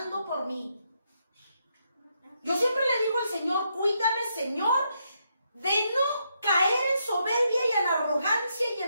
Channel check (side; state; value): both; inverted; correlation -0.79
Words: por mí. Yo siempre le digo al Señor, cuídame, Señor, de no caer en soberbia y en arrogancia y